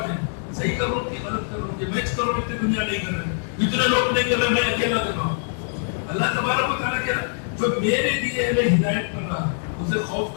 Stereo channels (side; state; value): right; silent; 63 dB below the other